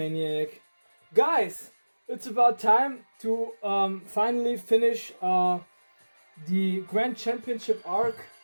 Guys, it's about time to finally finish the Grand Championship arc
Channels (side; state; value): both; inverted; correlation -1.00